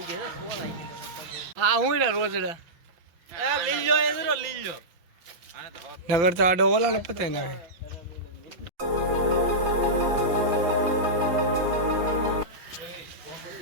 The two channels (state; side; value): late; left; 5.9 ms